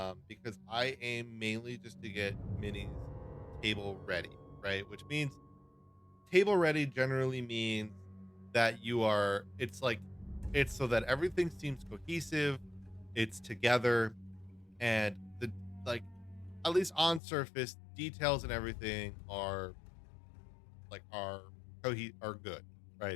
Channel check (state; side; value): drops out; right; at 17.2 s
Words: Because I aim mainly just to get minis table ready, right? Which means table ready generally means that it's so that everything seems cohesive, it's together, and the like at least on surface details and everything are are good,